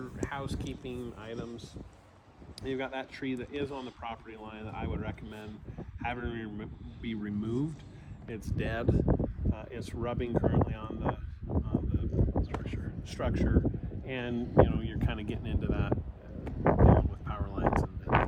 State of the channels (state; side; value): identical; both; correlation 1.00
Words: housekeeping items. You've got that tree that is on the property line that I would recommend having be removed. It's dead. It's rubbing currently on the structure, and you're kind of getting into that dealing with power lines and